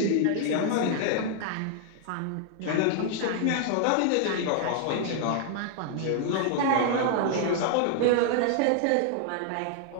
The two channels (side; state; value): both; different; correlation 0.00